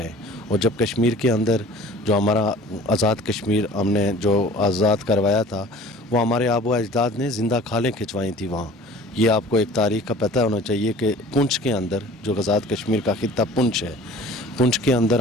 हैं। और जब कश्मीर के अंदर जो हमारा आज़ाद कश्मीर हमने जो आज़ाद करवाया था, वो हमारे आबो अजदाद ने ज़िंदा खालें खिंचवाई थी वहाँ। ये आपको एक तारीख़ का पता होना चाहिए कि पुंछ के अंदर जो आज़ाद कश्मीर का खित्ता पुंछ है, पुंछ के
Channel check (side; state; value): both; normal; correlation 0.45